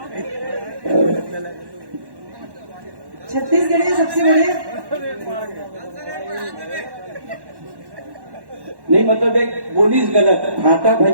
छत्तीसगढ़ियाँ सबसे बढ़िया नहीं, मतलब एक बोलीस गलत। भाटा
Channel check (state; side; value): late; left; 1.1 ms